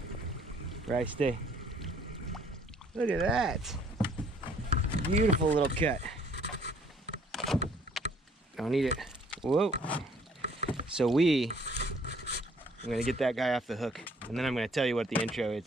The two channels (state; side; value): normal; both; correlation 0.61